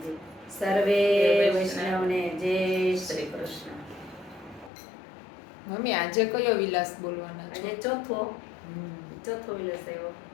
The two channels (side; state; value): right; drops out; at 4.7 s